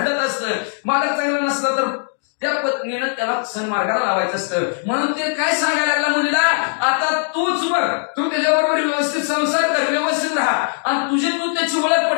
असतं. मालक चांगलं नसलं तर त्या पत्नीनं त्याला सन्मार्गाला लावायचं असतं. म्हणून ते काय सांगायला लागला मुलीला, आता तूच बघ, तू त्याच्याबरोबर व्यवस्थित संसार कर, व्यवस्थित राहा आणि तुझी तू त्याची ओळख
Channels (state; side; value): silent; right; 66 dB below the other